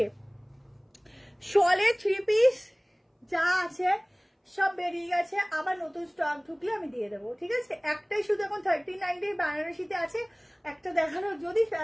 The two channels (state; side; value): identical; both; correlation 1.00